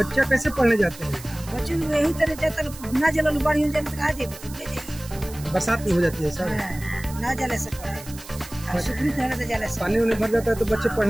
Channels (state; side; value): noise; right; hiss, 16 dB below the sound